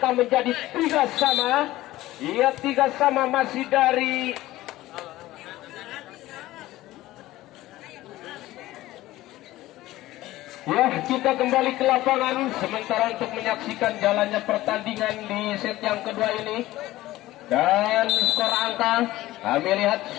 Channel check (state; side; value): quieter; right; 16.5 dB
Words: menjadi 3-3. Ia 3-3, masih dari ya, kita kembali ke lapangan sementara untuk menyaksikan jalannya pertandingan di set yang kedua ini. Dan skor angka kami lihat